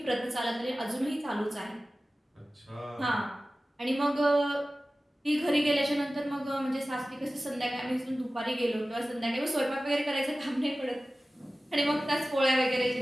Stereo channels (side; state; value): both; normal; correlation 0.96